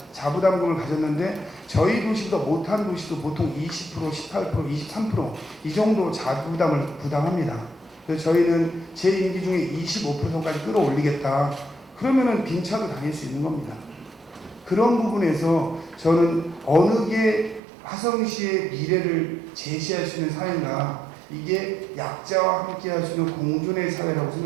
자부담금을 가졌는데, 저희 도시보다 못한 도시도 보통 20%, 18%, 23% 이 정도 자부담을 부담합니다. 그래서 저희는 제 임기 중에 25%까지 끌어올리겠다. 그러면은 빈차도 다닐 수 있는 겁니다. 그런 부분에서 저는 어느 게 화성시의 미래를 제시할 수 있는 사회인가, 이게 약자와 함께 할 수 있는 공존의 사회라고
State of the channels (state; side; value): drops out; left; at 17.6 s